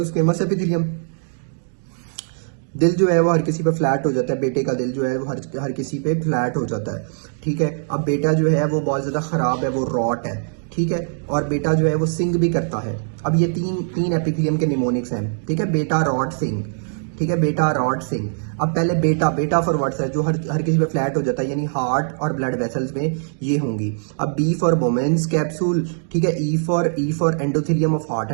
स्क्वेमस एपिथेलियम, दिल जो है वो हर किसी पे फ्लैट हो जाता है। बेटे का दिल जो है वो हर किसी पे फ्लैट हो जाता है, ठीक है। अब बेटा जो है वो बहुत ज़्यादा ख़राब है, वो रॉट है, ठीक है। और बेटा जो है वो सिंग भी करता है। अब ये तीन एपिथेलियम के निमोनिक्स हैं, ठीक है। बेटा, रॉट, सिंग, ठीक है। बेटा, रॉट, सिंग। अब पहले बेटा फॉर वर्ड्स है जो हर किसी पे फ्लैट हो जाता है, यानी हार्ट और ब्लड वेसल्स में ये होंगी। अब बी फॉर वुमेन्स कैप्सूल, ठीक है। E for endothelium of heart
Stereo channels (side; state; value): left; silent; digital silence